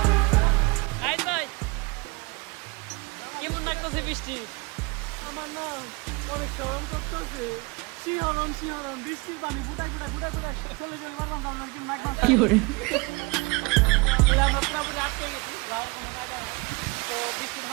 ভাই কেমন লাগতেছে বৃষ্টি? আমার না অনেক শরম করতেছে, শিহরণ বৃষ্টির পানি ফুটাই চলে পারলাম না, আপনার কি নাক কি করে আমরা পুরোপুরি আটকে গেছি, যাওয়ার কোনো জায়গা নেই। তো বৃষ্টি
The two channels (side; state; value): left; quieter; 26.9 dB